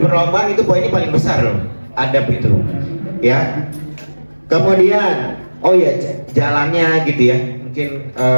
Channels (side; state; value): both; inverted; correlation -1.00